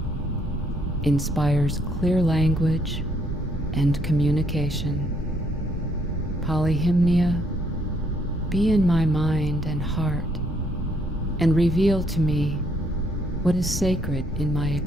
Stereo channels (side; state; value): both; normal; correlation 0.69